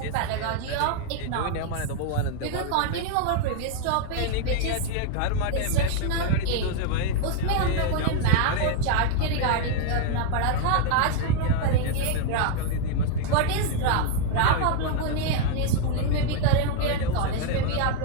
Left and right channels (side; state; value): both; different; correlation 0.00